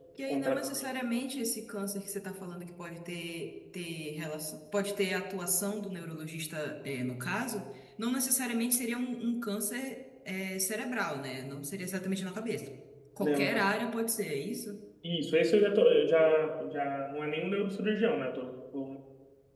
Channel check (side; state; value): both; identical; correlation 1.00